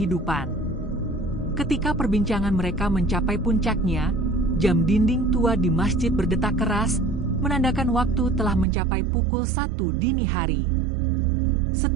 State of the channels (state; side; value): drops out; left; at 8.7 s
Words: Ketika perbincangan mereka mencapai puncaknya, jam dinding tua di masjid berdetak keras, menandakan waktu telah mencapai pukul 1 dini hari.